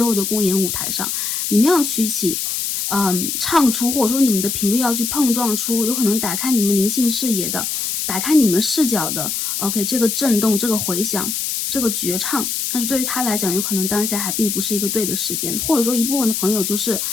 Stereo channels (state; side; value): noise; left; hiss, 2 dB below the sound